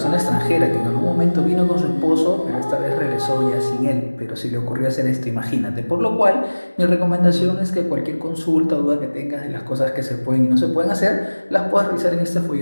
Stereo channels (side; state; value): both; inverted; correlation -1.00